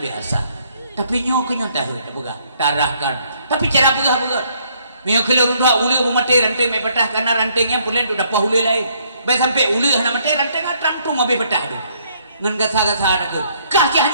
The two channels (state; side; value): inverted; both; correlation -0.67